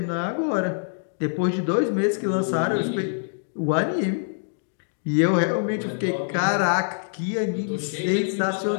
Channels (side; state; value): right; silent; digital silence